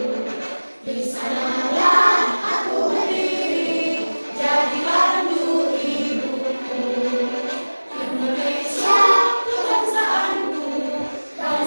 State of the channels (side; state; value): both; inverted; correlation -1.00